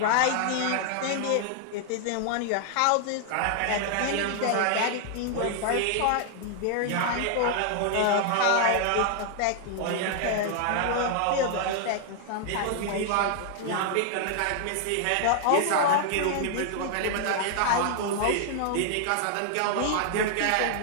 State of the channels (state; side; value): different; both; correlation 0.00